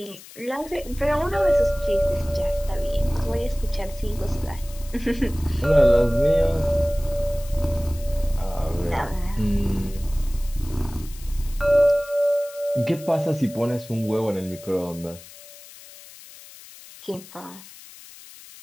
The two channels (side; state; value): left; noise; hiss, 19 dB below the sound